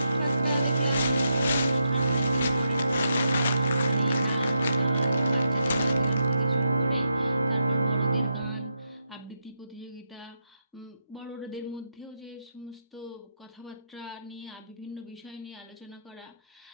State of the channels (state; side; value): inverted; both; correlation -0.82